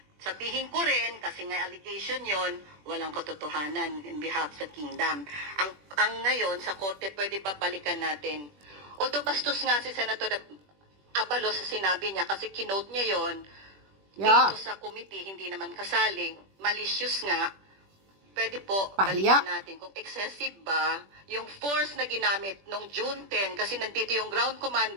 Sabihin ko rin, kasi nga allegation yon, walang katotohanan in behalf sa kingdom. Ang ngayon, sa korte, pwede pa balikan natin. Although bastos nga si Senator Abalos sa sinabi niya, kasi kinote niya yon, dito sa committee, hindi naman kasali, malicious nga, pwede po balikan natin kung excessive ba yung force na ginamit nung June 10 kasi nandito yung ground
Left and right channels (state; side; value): late; left; 21 ms